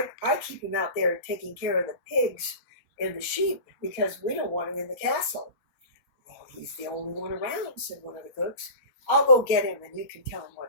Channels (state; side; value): late; right; 4.4 ms